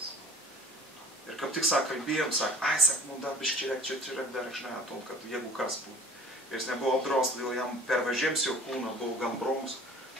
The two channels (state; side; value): normal; both; correlation 0.46